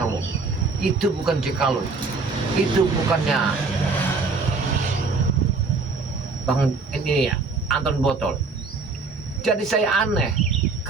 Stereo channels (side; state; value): left; quieter; 4.2 dB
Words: itu bukan Cekaloy, itu bukannya Bang ini ya, Anton Botol. Jadi saya aneh.